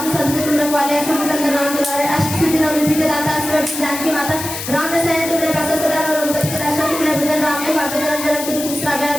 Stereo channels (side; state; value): left; noise; hiss, 7 dB below the sound